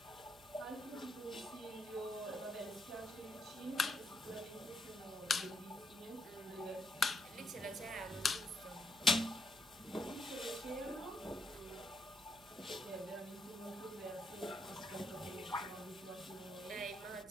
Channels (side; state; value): right; noise; hum, 24 dB below the sound